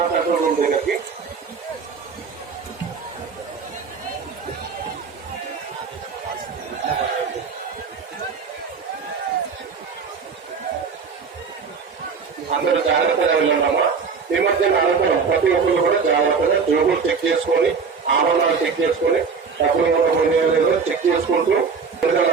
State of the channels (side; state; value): left; quieter; 5.5 dB